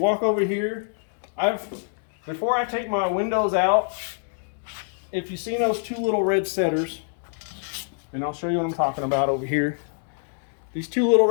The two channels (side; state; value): right; silent; digital silence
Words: over here, before I take my windows out, if you've seen those two little red setters, and I'll show you what I'm talking about over here. These two little